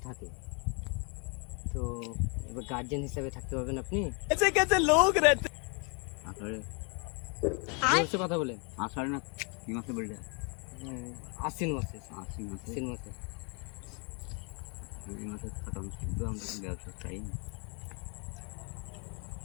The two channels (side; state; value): right; quieter; 34.6 dB